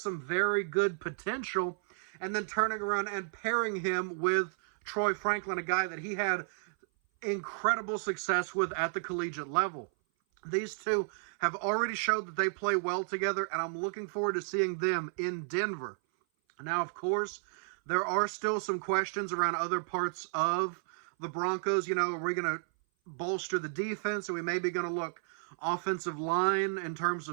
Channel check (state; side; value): silent; left; 56 dB below the other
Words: very good potential, and then turning around and pairing him with Troy Franklin, a guy that he had incredible success with at the collegiate level. These two have already showed that they play well together, and I'm looking forward to seeing them in Denver. Now, of course, there are still some questions around other parts of the Broncos. You know, are we going to bolster the defense? Are we maybe going to look offensive line in terms